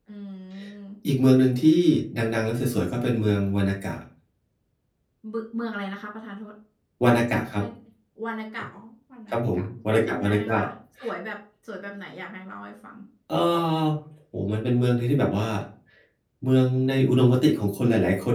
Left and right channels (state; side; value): identical; both; correlation 1.00